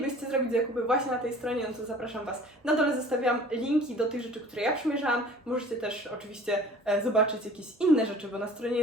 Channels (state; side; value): normal; both; correlation 0.47